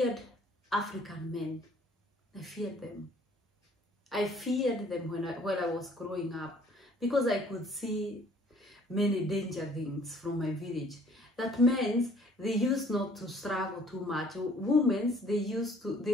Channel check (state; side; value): normal; both; correlation 0.57